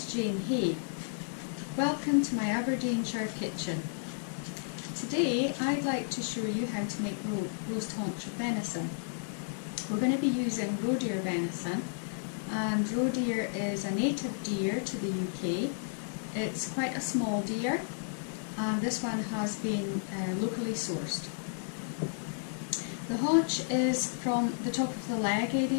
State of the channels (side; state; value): right; silent; 56 dB below the other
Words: Jane Hay. Welcome to my Aberdeenshire kitchen. Today I'd like to show you how to make roast haunch of venison. We're going to be using Roe Deer Venison, and Roe Deer is a native deer to the UK. It's quite a small deer, and this one has been locally sourced. The haunch is from the top of the leg